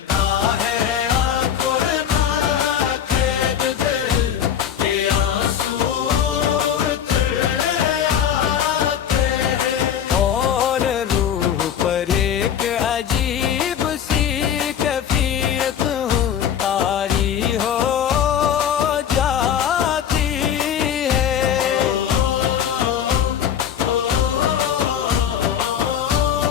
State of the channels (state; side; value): quieter; right; 9.0 dB